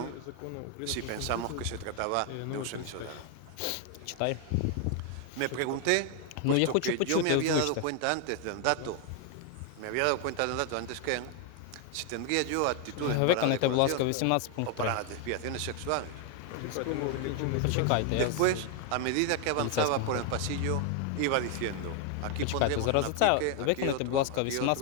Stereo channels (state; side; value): different; both; correlation 0.00